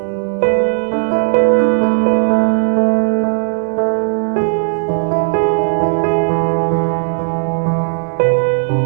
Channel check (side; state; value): left; silent; digital silence